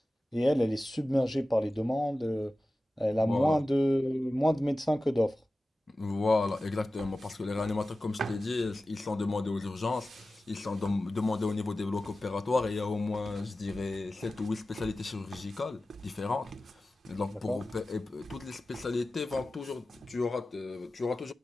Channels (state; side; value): normal; both; correlation 0.95